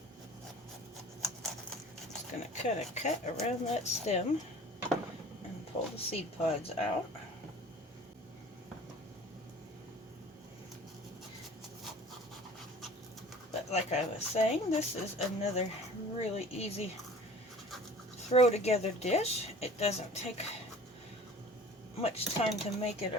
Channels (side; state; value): both; normal; correlation 0.45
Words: Going to cut a cut around that stem and pull the seed pods out. But like I was saying, this is another really easy throw together dish. It doesn't take much time to make it